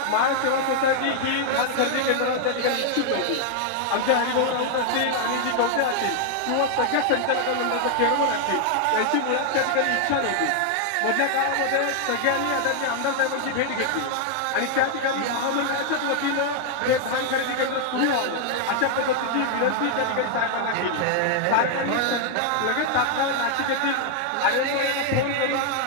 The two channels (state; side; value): different; both; correlation 0.00